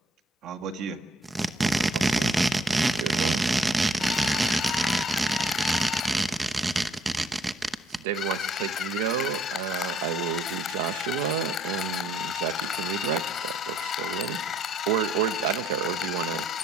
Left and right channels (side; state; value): both; normal; correlation 0.64